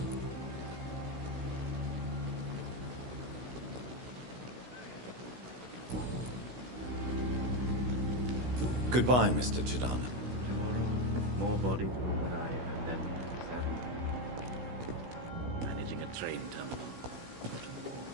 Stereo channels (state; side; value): late; left; 16 ms